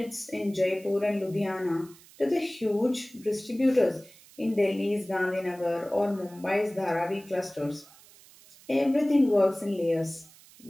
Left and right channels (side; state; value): right; noise; hiss, 24 dB below the sound